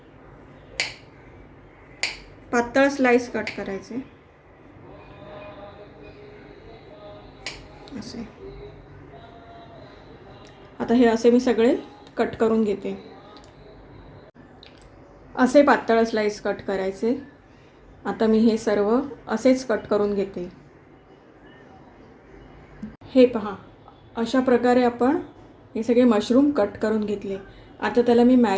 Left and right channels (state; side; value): identical; both; correlation 1.00